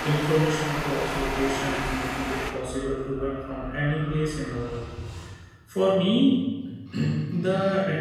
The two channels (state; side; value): identical; both; correlation 1.00